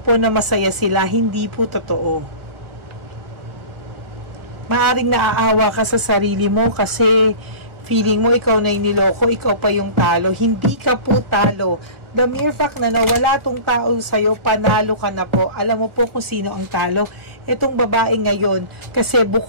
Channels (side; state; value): left; late; 1.4 ms